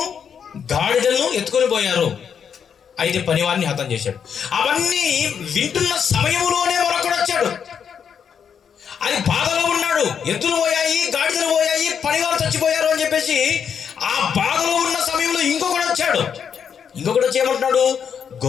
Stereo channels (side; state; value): right; quieter; 7.4 dB